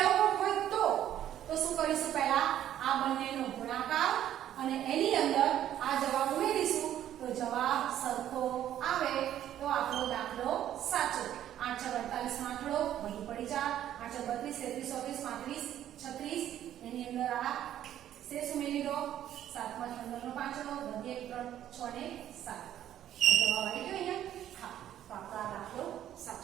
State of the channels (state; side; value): quieter; left; 11.4 dB